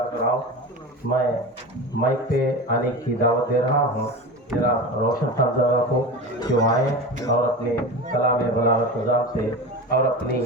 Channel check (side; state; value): both; normal; correlation 0.28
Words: कराओ। मैं माइक पे आने की दावत दे रहा हूँ जरा रोशन साहबजादा को कि वो आए और अपने कलाम बलागत निज़ाम से और अपनी